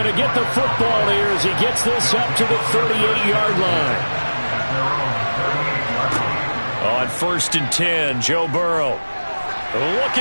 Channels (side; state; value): both; inverted; correlation -1.00